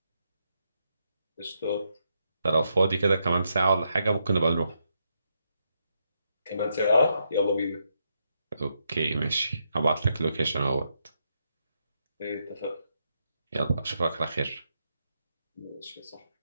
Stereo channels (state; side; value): inverted; both; correlation -0.81